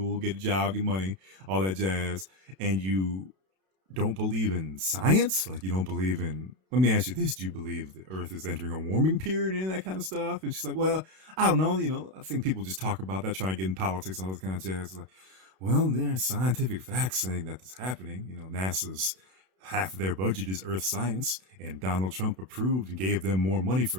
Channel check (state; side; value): late; left; 32 ms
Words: get a job, get money, all that jazz. And you don't believe in science? Like, you don't believe in, let me ask you this, do you believe the Earth is entering a warming period and that kind of stuff? And she's like, well, I don't know, I think people just talk about that, trying to get in politics and all this kind of jazz. Like, well, there are scientific facts saying that this is happening. NASA's half of their budget is Earth science, and Donald Trump approved and gave them more money